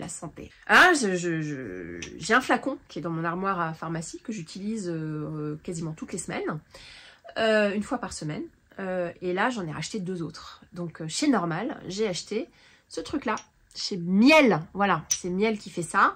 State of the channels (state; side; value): identical; both; correlation 1.00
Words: santé. Ah, j'ai un flacon qui est dans mon armoire à pharmacie que j'utilise quasiment toutes les semaines, une fois par semaine, et là j'en ai racheté 2 autres. Donc chez Normal, j'ai acheté ce truc là. Chez Miel, voilà, c'est Miel qui fait ça.